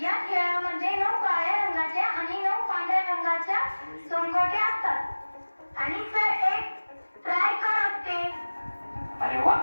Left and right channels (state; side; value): inverted; both; correlation -1.00